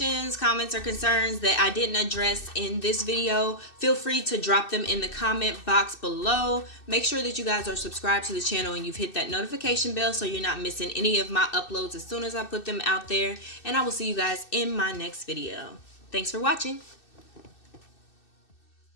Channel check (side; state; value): right; late; 2.6 ms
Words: comments, or concerns that I didn't address in this video, feel free to drop them in the comment box below. Make sure that you guys are subscribed to the channel and you've hit that notification bell so you're not missing any of my uploads as soon as I put them out there. And I will see you guys in my next video. Thanks for watching.